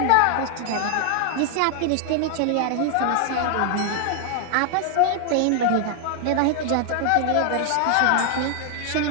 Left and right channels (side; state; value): both; different; correlation 0.00